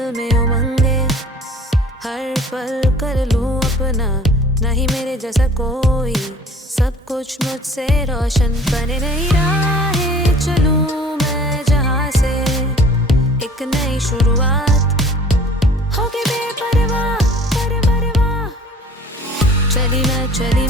में उमंगे। हर पल कर लूं अपना, नहीं मेरे जैसा कोई, सब कुछ मुझसे रोशन। बने नई राहें चलूं मैं जहां से, एक नई शुरुआत होके बेपरवाह परवाह। चली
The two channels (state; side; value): normal; both; correlation 0.50